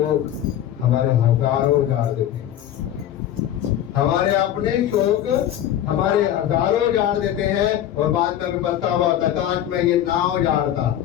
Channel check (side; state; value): right; quieter; 11.3 dB